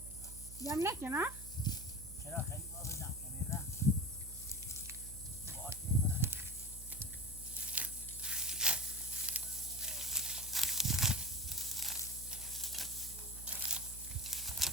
جمع نکنه چرا خیلی باز جمع کنید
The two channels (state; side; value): noise; right; hum, 12 dB below the sound